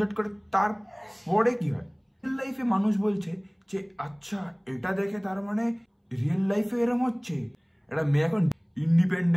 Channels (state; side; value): identical; both; correlation 1.00